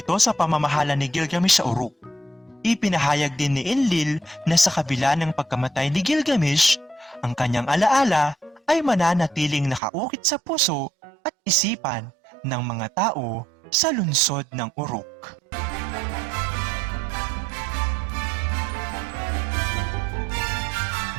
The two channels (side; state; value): left; drops out; at 9.8 s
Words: sa pamamahala ni Gilgamesh sa Uruk. Ipinahayag din ni Enlil na sa kabila ng pagkamatay ni Gilgamesh, ang kanyang alaala ay mananatiling nakaukit sa puso at isipan ng mga tao sa lungsod ng Uruk.